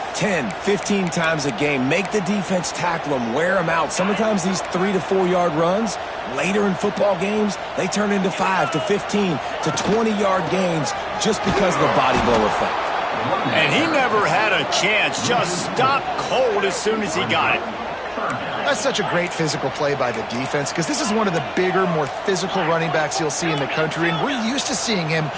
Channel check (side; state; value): both; identical; correlation 1.00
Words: 10, 15 times a game. Make the defense tackle them, wear them out. Sometimes these 3 to 4 yard runs, later in football games, they turn into 5 to 15 to 20 yard gains just because of the body blow effect. And he never had a chance, just stopped cold as soon as he got it. That's such a great physical play by the defense because this is one of the bigger, more physical running backs you'll see in the country, and we're used to seeing him